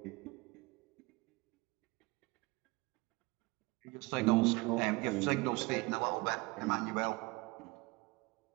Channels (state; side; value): quieter; left; 24.7 dB